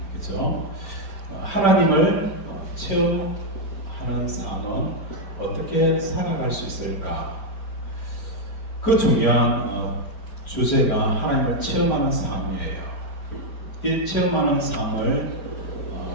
그죠? 하나님을 체험하는 삶은 어떻게 살아갈 수 있을까? 그 중요한 주제가 하나님을 체험하는 삶이에요. 이 체험하는 삶을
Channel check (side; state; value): right; late; 4.5 ms